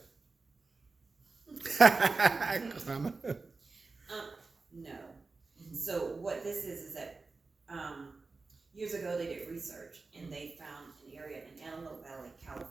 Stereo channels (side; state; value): left; quieter; 3.9 dB